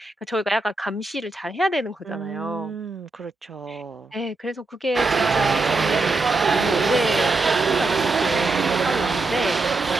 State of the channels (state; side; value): quieter; left; 3.3 dB